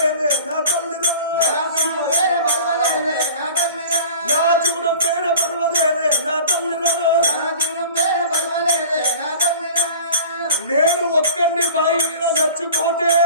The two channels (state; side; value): inverted; both; correlation -0.41